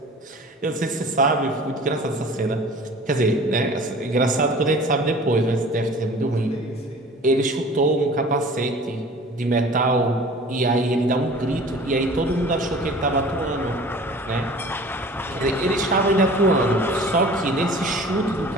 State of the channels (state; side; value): normal; both; correlation 0.44